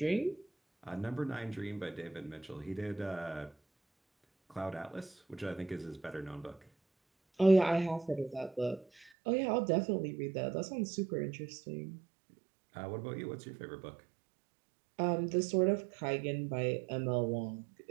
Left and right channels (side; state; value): left; drops out; at 9.1 s